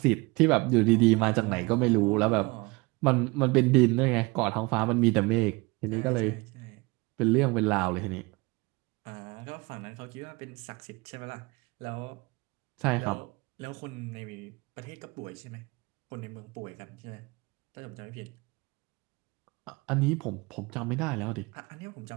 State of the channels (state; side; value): quieter; left; 25.4 dB